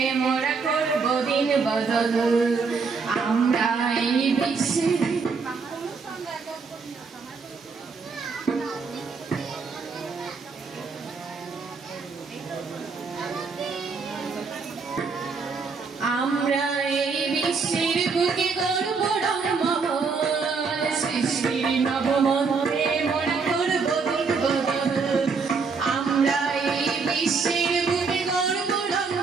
মোরা করব দিন বদল আমরা এই বিশ্বের আমরা এই বিশ্বের বুকে গর্ব রম্মহর সৃষ্টির নবমন্ত্রে মোরা করব দিন বদল আমরা এই বিশ্বের বুকে গর্ব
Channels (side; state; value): left; quieter; 4.9 dB